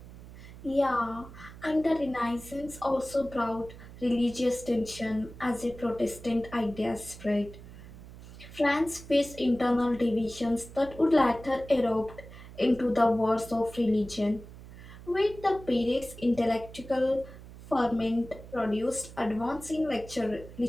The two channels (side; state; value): right; noise; hum, 16 dB below the sound